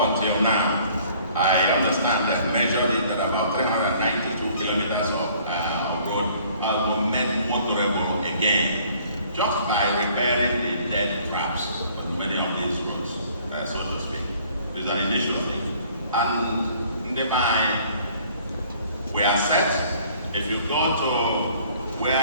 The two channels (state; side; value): inverted; both; correlation -0.57